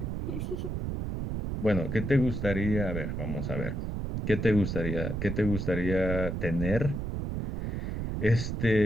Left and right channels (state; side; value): noise; right; rumble, 3 dB below the sound